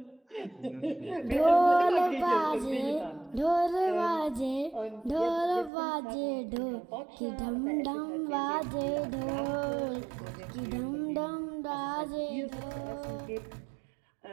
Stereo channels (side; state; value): left; drops out; at 5.7 s